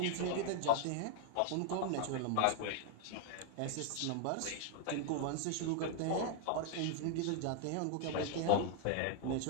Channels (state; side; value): different; both; correlation 0.00